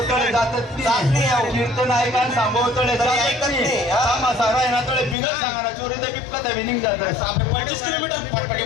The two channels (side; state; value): right; drops out; at 5.2 s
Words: तळे जातच नाही कीर्तन ऐकायला सांगो तळे ऐकत नाही सारा आहे ना तळे बिगर सांगा चोरी तर बिपका तर विनिंग जात 25 किलोमीटर फटफटी